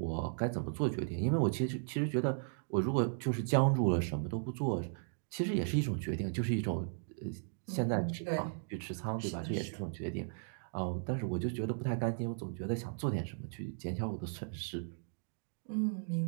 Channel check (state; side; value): silent; left; digital silence